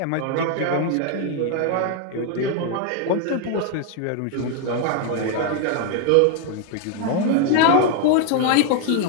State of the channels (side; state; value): both; different; correlation 0.00